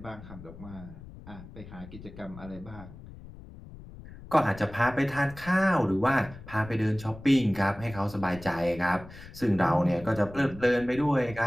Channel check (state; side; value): noise; left; rumble, 16 dB below the sound